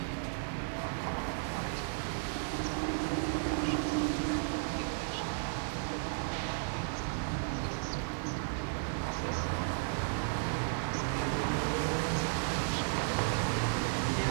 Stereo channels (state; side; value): silent; left; digital silence